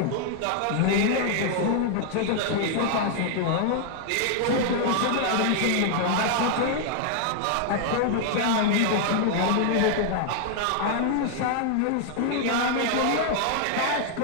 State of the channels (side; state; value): both; different; correlation 0.00